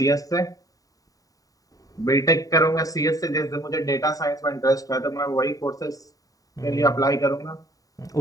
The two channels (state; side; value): late; right; 0.17 ms